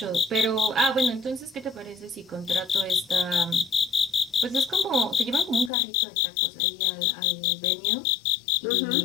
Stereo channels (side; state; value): right; drops out; at 5.7 s